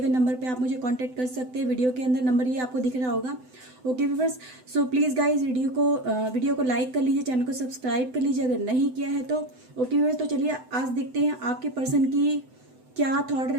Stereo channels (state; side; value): late; left; 7.9 ms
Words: नंबर पे आप मुझे कांटेक्ट कर सकते हैं। वीडियो के अंदर नंबर ये आपको दिख रहा होगा। Okay viewers, so please guys video को लाइक कर लीजिए, चैनल को सब्सक्राइब कर लीजिए अगर नहीं किया है तो। ओके व्यूवर्स, तो चलिए आज देखते हैं आपके पर्सन की क्या थॉट